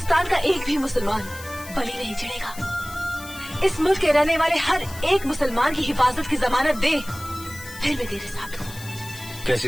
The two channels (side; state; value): left; noise; hiss, 15 dB below the sound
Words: का एक भी मुसलमान बलि नहीं चढ़ेगा। इस मुल्क के रहने वाले हर एक मुसलमान की हिफाजत की जमानत दे फिर मैं तेरे साथ हूँ। कैसी